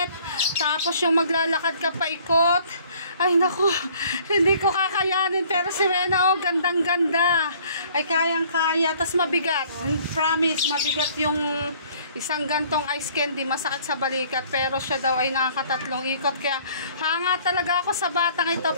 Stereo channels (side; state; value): both; inverted; correlation -0.56